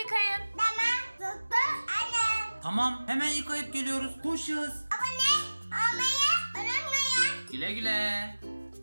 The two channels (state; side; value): inverted; both; correlation -1.00